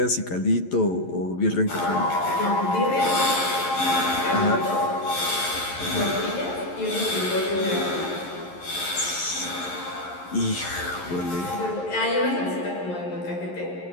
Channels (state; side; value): late; right; 11 ms